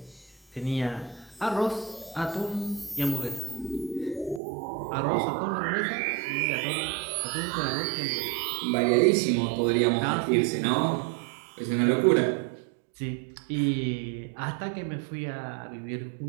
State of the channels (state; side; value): drops out; left; at 4.4 s